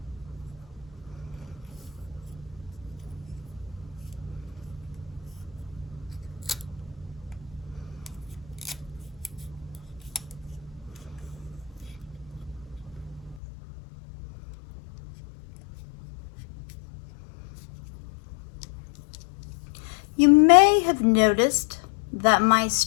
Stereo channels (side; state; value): right; drops out; at 13.4 s